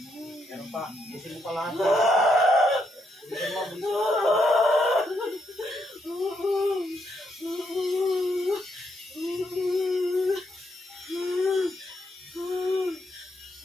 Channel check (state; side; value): normal; both; correlation 0.77